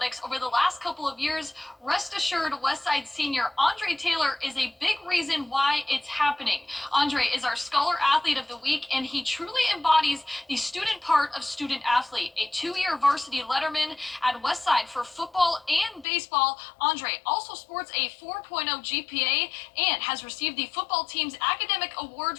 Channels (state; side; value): drops out; right; at 16.1 s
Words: over the last couple of years. Rest assured, Westside senior Andre Taylor is a big reason why it's happening. Andre is our Scholar Athlete of the Week, and he truly embodies the student part of student athlete. A 2-year varsity letterman at Westside for football and baseball, Andre also sports a 4.0 GPA and has received the football team's academic award